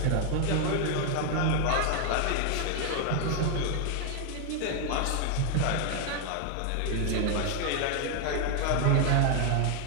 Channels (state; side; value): different; both; correlation 0.00